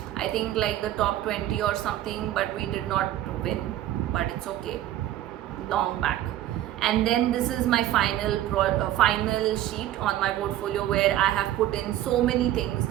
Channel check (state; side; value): quieter; left; 13.2 dB